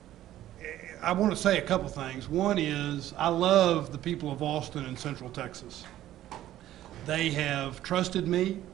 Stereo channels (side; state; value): left; quieter; 13.4 dB